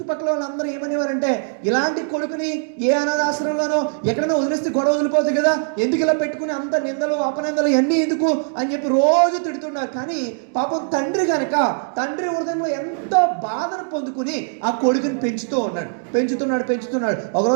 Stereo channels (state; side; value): silent; left; digital silence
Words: వాళ్ళందరూ ఏమనేవారంటే ఇలాంటి కొడుకుని ఏ అనాథాశ్రమంలోనో ఎక్కడైనా వదిలేస్తే గొడవ వదిలిపోతుంది కదా, ఎందుకు ఇలా పెట్టుకుని అంత నిందలు అపనిందలు ఇవన్నీ ఎందుకు అని చెప్పి రోజు తిడుతున్నారు. కానీ పాపం తండ్రి హృదయంలో ఎంతో బాధను పొందుకుని ఆ కొడుకుని పెంచుతున్నాడు.